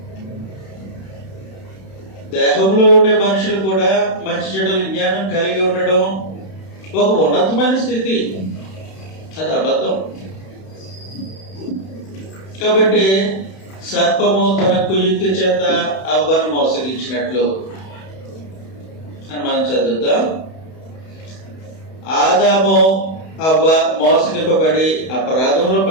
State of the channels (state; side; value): late; right; 31 ms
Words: దేహంలో ఉండే మనుషులు కూడా మంచి చెడుల జ్ఞానం కలిగి ఉండడం ఒక ఉన్నతమైన స్థితి, అది అబద్ధం. కాబట్టి సర్పము తన కుయుక్తి చేత అవ్వను మోసగించినట్లు అని మనం చదువుతాం. ఆదాము అవ్వ మోసగింపబడి అపరాధంలో